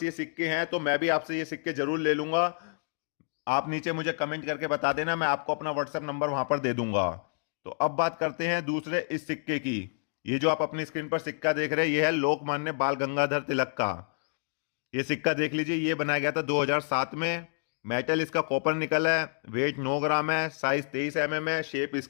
ये सिक्के हैं तो मैं भी आपसे ये सिक्के जरूर ले लूंगा। आप नीचे मुझे कमेंट करके बता देना, मैं आपको अपना व्हाट्सएप नंबर वहां पर दे दूंगा। तो अब बात करते हैं दूसरे इस सिक्के की। ये जो आप अपनी स्क्रीन पर सिक्का देख रहे हैं ये है लोकमान्य बाल गंगाधर तिलक का। ये सिक्का देख लीजिए, ये बनाया गया था 2007 में। मेटल इसका कॉपर निकल है, वेट 9 ग्राम है, साइज 23 mm है, शेप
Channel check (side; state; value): right; silent; digital silence